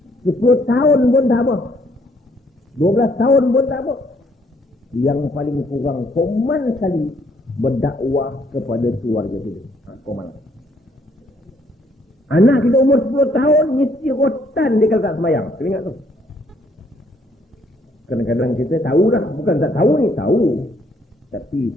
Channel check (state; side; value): normal; both; correlation 0.68